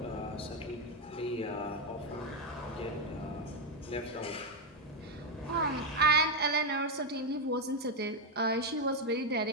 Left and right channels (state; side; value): normal; both; correlation 0.04